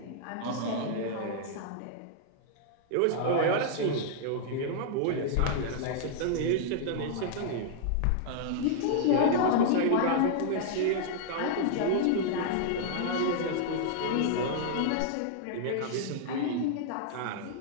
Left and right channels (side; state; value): both; different; correlation -0.01